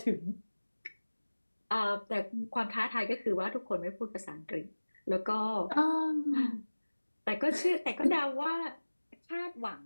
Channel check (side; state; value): both; inverted; correlation -1.00